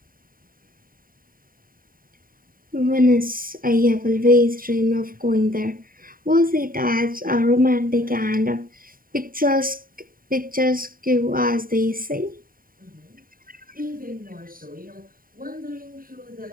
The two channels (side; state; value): left; late; 0.41 ms